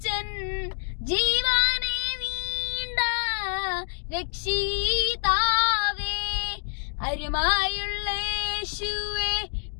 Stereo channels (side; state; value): right; silent; digital silence